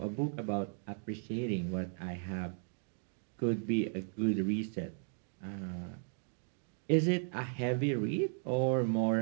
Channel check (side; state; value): left; silent; 54 dB below the other